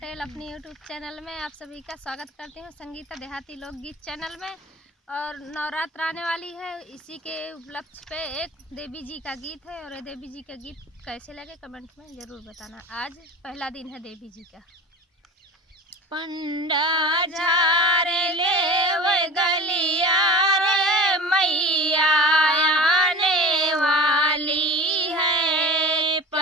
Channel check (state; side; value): normal; both; correlation 0.37